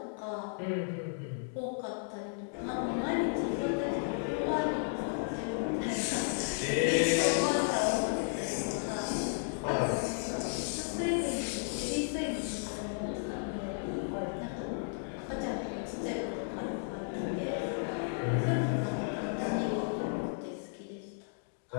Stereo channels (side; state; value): right; silent; digital silence